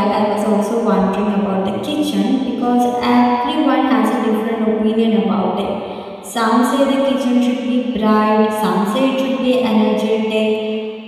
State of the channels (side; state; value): both; identical; correlation 1.00